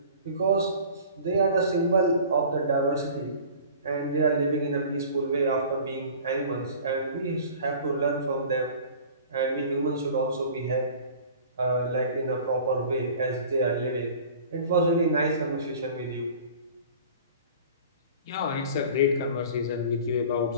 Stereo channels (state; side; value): inverted; both; correlation -0.43